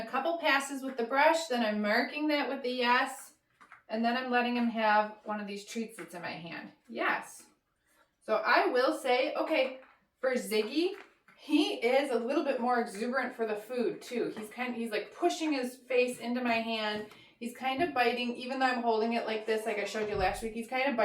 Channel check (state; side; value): identical; both; correlation 1.00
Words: couple passes with the brush, then I'm marking that with a yes, and then I'm letting him have one of these treats that's in my hand. Yes. So I will say, okay, for Ziggy, he is a little bit more exuberant for the food too. He's like pushing his face into my hand. He's kind of biting, even though I'm holding it like this, like I showed you last week, he's kind of